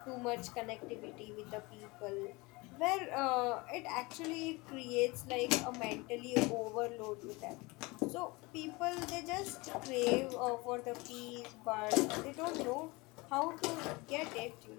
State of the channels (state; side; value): quieter; right; 24.5 dB